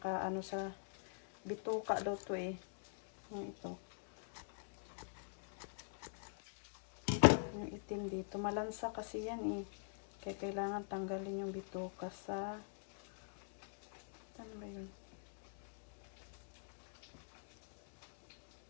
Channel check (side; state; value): right; silent; digital silence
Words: ano sa bituka daw to eh. Yung ito. Yung itim dito. Malansa kasi yan eh. Kaya kailangan tanggalin yung bituka sa ano ba yun?